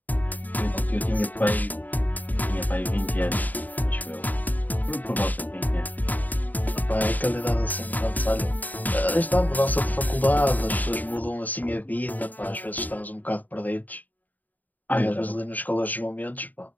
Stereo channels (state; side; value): late; right; 0.082 ms